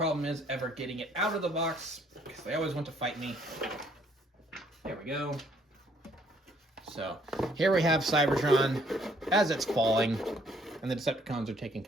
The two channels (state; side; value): normal; both; correlation 0.65